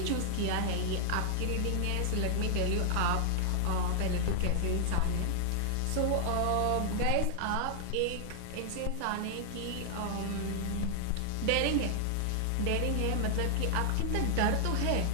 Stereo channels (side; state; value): both; different; correlation 0.00